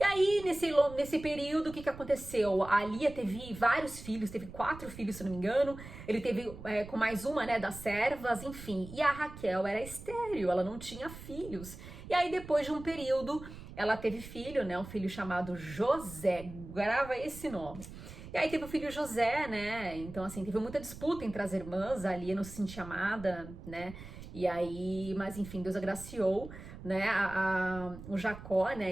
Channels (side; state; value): right; noise; rumble, 14 dB below the sound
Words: aí, nesse período, o que aconteceu? A Lia teve vários filhos, teve 4 filhos, se não me engano. Ele teve com mais uma, né, das servas, enfim. E a Raquel era estéril, ela não tinha filhos. E aí, depois de um período, ela teve filho, né, um filho chamado José. Grava esse nome. E aí teve o filho José, né? Então, assim, teve muita disputa entre as irmãs, a Lia não se sentia amada, né? E aí, mas enfim, Deus agraciou, né, o Jacó,